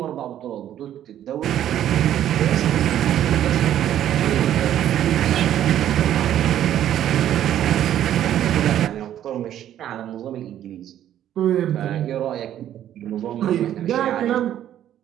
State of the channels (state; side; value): quieter; left; 11.3 dB